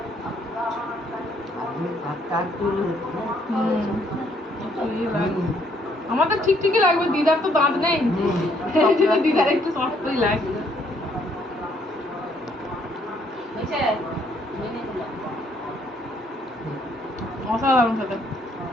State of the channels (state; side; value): normal; both; correlation 0.68